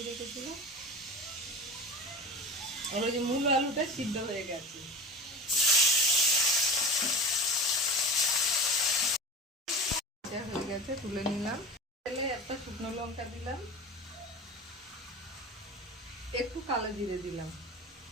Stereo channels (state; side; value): normal; both; correlation 0.32